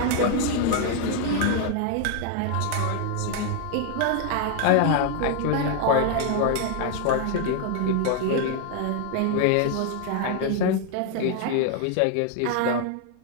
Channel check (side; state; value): both; different; correlation 0.00